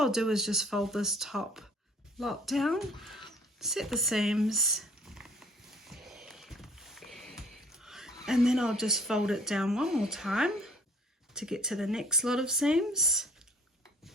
do is just fold this top lot down, set the seams, and then I'll just fold it down one more time to get to the next lot of seams.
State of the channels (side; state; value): both; normal; correlation 0.55